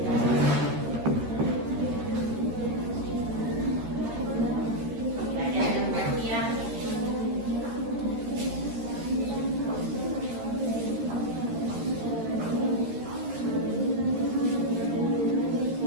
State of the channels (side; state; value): left; late; 13 ms